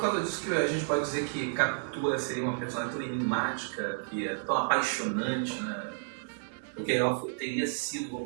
causa disso que a gente pode dizer que Capitu seria uma personagem tão enigmática, que é tão apaixonante, né? Porque ela teria sido,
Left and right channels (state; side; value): silent; left; 57 dB below the other